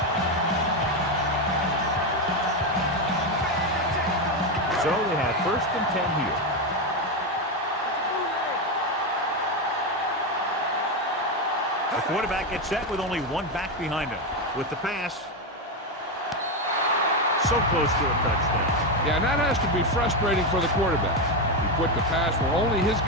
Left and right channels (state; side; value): normal; both; correlation 0.10